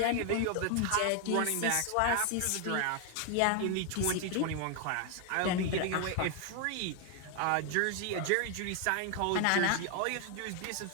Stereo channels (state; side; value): different; both; correlation 0.01